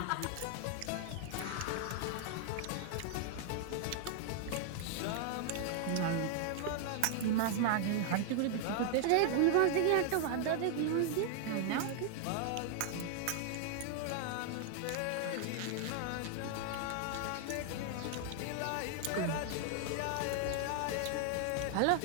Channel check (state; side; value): different; both; correlation 0.00